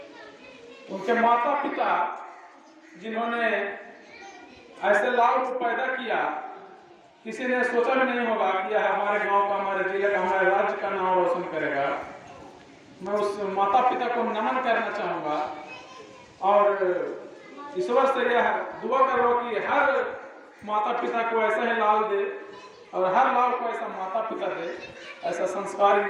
उनके माता पिता जिन्होंने ऐसे लाल को पैदा किया, किसी ने सोचा भी नहीं होगा कि यह हमारे गांव का, हमारे जिले का, हमारे राज्य का नाम रोशन करेगा। मैं उस माता पिता को नमन करना चाहूँगा और ईश्वर से यह दुआ करो कि हर माता पिता को ऐसा ही लाल दे और हर लाल को ऐसा माता पिता दे, ऐसा संस्कारी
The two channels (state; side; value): identical; both; correlation 1.00